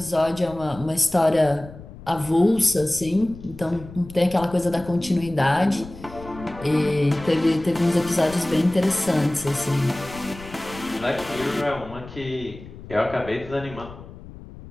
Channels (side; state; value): left; noise; rumble, 16 dB below the sound